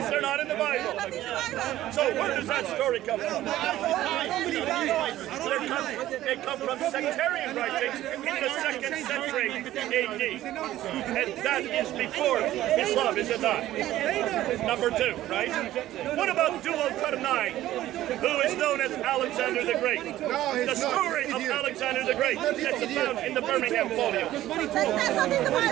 They're not in the Bible. So where does that story come from? They come from sectarian writings in the 2nd century AD. And that is before Islam, is it not? Number 2, right? What about Dual-Qarnayn, who is known as Alexander the Great? The story of Alexander the Great that's found in the Birmingham folio.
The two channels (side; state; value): left; quieter; 14.3 dB